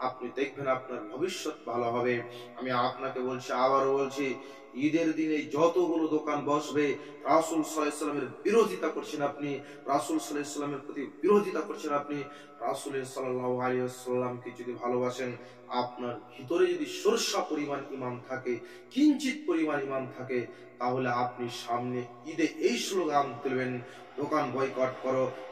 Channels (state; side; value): identical; both; correlation 1.00